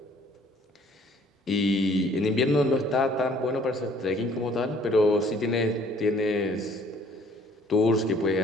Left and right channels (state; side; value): normal; both; correlation 0.57